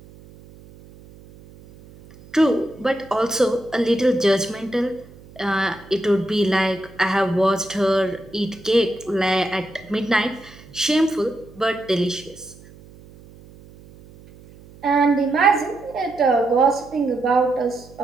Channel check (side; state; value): right; noise; hum, 22 dB below the sound